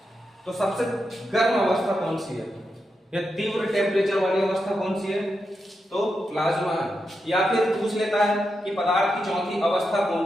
तो सबसे गर्म अवस्था कौन सी है या तीव्र टेम्परेचर वाली अवस्था कौन सी है, तो प्लाज्मा है। या फिर पूछ लेता है कि पदार्थ की चौथी अवस्था कौन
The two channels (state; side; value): normal; both; correlation 0.86